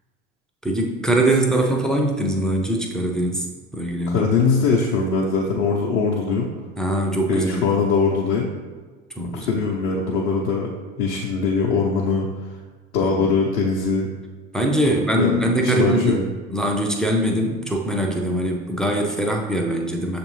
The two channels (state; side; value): normal; both; correlation 0.32